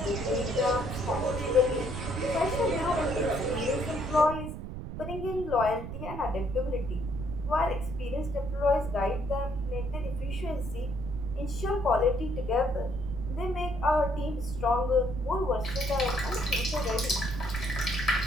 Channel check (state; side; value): noise; right; rumble, 7 dB below the sound